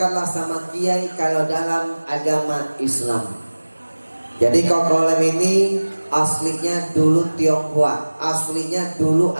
sama kiai kalau dalam agama Islam. Jadi Kokolim ini aslinya dulu Tionghoa, aslinya dulu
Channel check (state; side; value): inverted; both; correlation -1.00